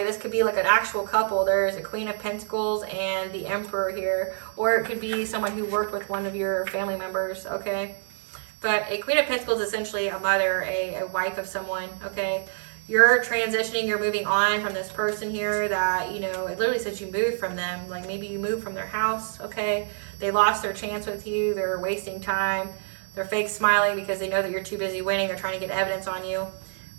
This could be like an actual couple. There's a Queen of Pentacles and the Emperor here. Or it could be someone who worked with one of your family members, okay? But a Queen of Pentacles is essentially a mother, a wife of someone, okay? You're transitioning, you're moving on from this person here that, you know, it literally says you moved from them. Like maybe you moved from their house, okay? They lost their chance with you. They're wasting time. They're fake smiling because they know that you're too busy winning. They're trying to get evidence on you.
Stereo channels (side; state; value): left; silent; digital silence